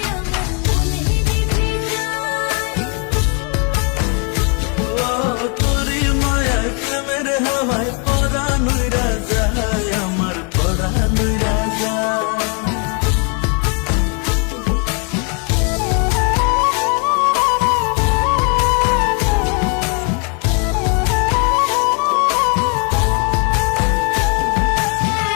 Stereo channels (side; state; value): right; quieter; 36.9 dB